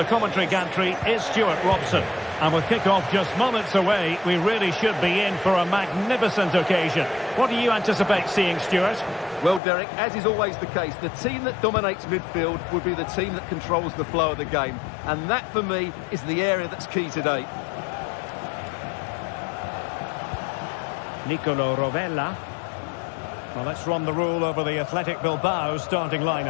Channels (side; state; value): right; drops out; at 9.6 s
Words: commentary gantry is Stuart Robson. And with kick-off just moments away, we really should be in for a magnificent occasion. What do you anticipate seeing, Stuart? Well, Derek, as is always the case, the team that dominates midfield will be the team that controls the flow of the game. And that, for me, is the area that's key today. Nicolo Rovella. Well, let's run the rule over the Athletic Bilbao starting